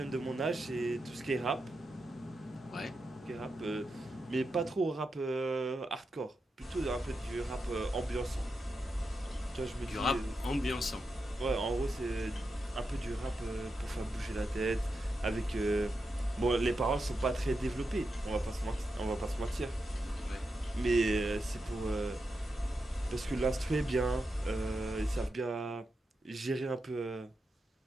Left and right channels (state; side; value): normal; both; correlation 0.87